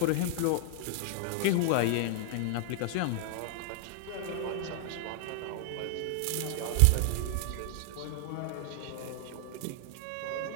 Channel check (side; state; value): both; different; correlation 0.00